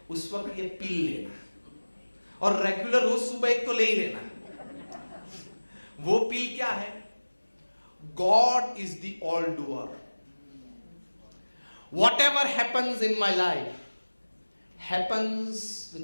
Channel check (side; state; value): both; inverted; correlation -1.00